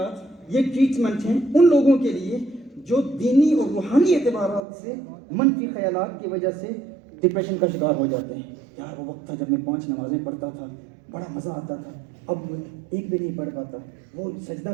یہ ٹریٹمنٹ ہیں ان لوگوں کے لیے جو دینی اور روحانی اعتبارات سے منفی خیالات کی وجہ سے ڈپریشن کا شکار ہو جاتے ہیں. یار وہ وقت تھا جب میں 5 نمازیں پڑھتا تھا، بڑا مزہ آتا تھا، اب ایک بھی نہیں پڑھ پاتا. وہ سجدہ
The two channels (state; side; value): drops out; left; at 4.7 s